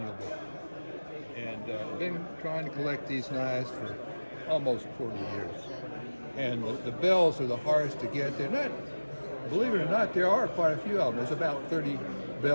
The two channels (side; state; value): both; inverted; correlation -1.00